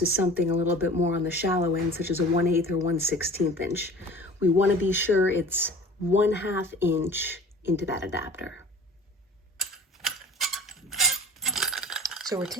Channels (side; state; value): both; normal; correlation 0.44